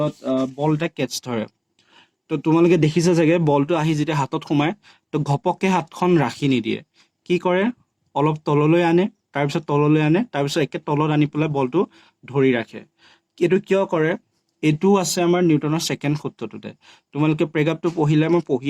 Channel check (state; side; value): identical; both; correlation 1.00